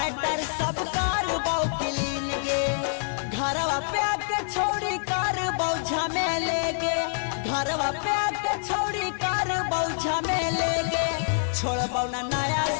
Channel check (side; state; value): right; silent; 61 dB below the other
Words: सब कार बौखलीन गे। घरवा पे आके छोड़ी कार बौझा में लेगे। घरवा पे आके छोड़ी कार बौझा में लेगे। छोड़बो ना नया